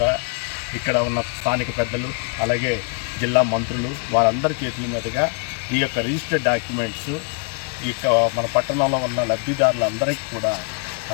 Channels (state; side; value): quieter; right; 38.5 dB